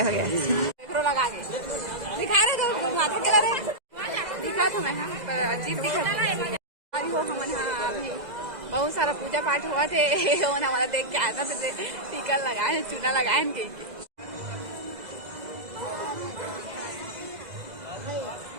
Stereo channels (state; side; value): late; left; 2.0 ms